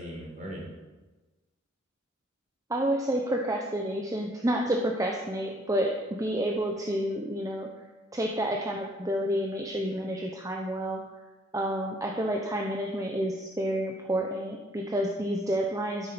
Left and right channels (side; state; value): both; normal; correlation 0.62